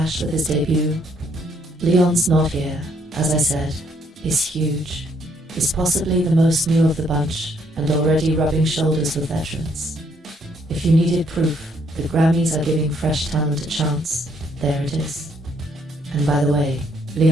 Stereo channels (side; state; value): both; normal; correlation 0.69